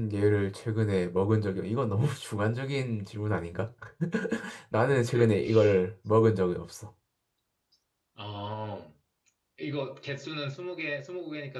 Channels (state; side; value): identical; both; correlation 1.00